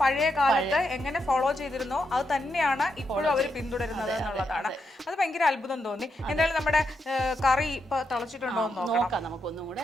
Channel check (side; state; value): both; normal; correlation 0.83